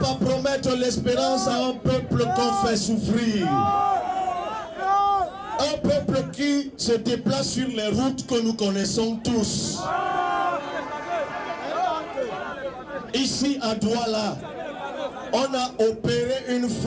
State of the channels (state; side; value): identical; both; correlation 1.00